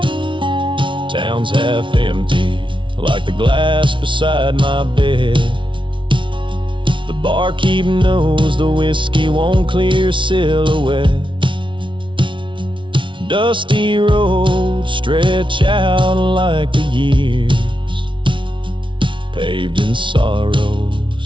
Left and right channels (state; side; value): late; left; 0.24 ms